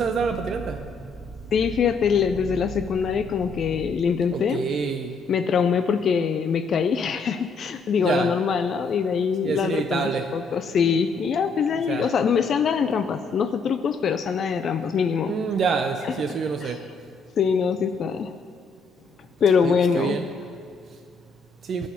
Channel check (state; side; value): quieter; right; 4.1 dB